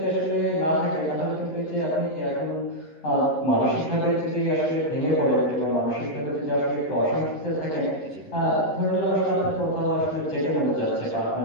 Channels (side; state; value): right; late; 13 ms